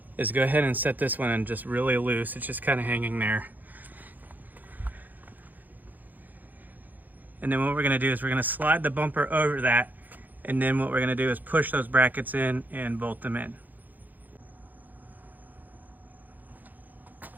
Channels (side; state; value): left; late; 0.084 ms